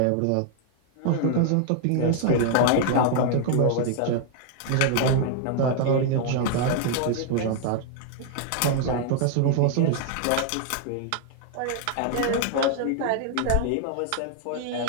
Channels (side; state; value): both; different; correlation 0.00